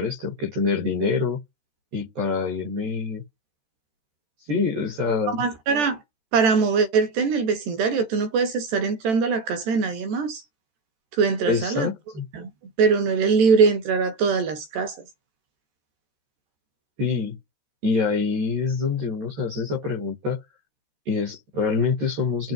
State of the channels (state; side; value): late; left; 13 ms